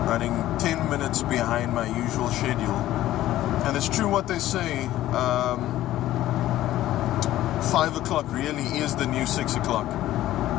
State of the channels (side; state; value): right; quieter; 14.3 dB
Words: running 10 minutes behind my usual schedule. And it's true what they say, 5 o'clock really is the new 6 o'clock.